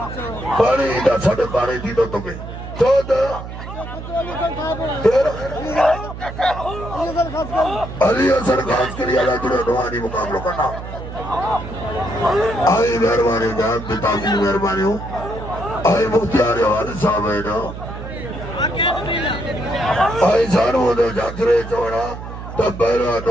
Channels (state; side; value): noise; right; hum, 10 dB below the sound